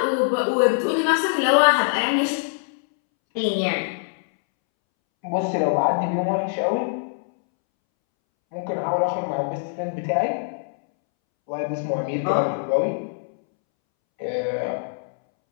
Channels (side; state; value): right; silent; 63 dB below the other